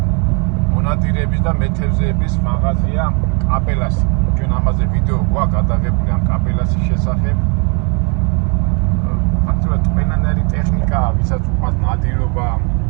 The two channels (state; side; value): quieter; left; 34.2 dB